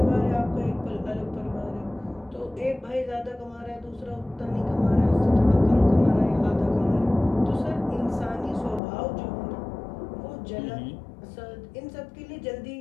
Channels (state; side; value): drops out; right; at 8.8 s